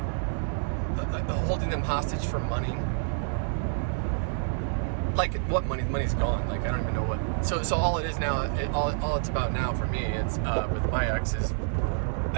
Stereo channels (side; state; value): left; silent; 59 dB below the other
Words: holding them hostage for money. Like, what money? The money's gone. Like, I don't even know what. So all it is now, all it's about now for me, it's with my ex is,